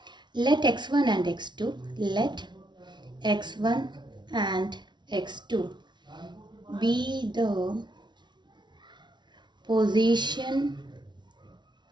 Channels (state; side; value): late; left; 0.21 ms